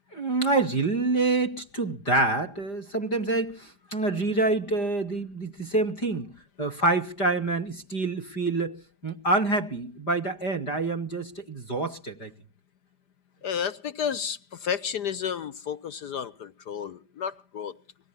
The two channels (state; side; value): late; right; 5.0 ms